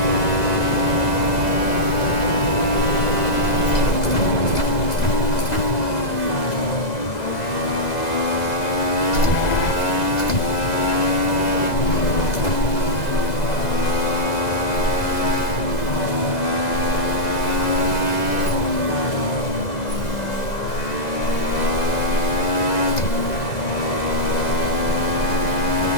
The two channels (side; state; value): right; late; 2.0 ms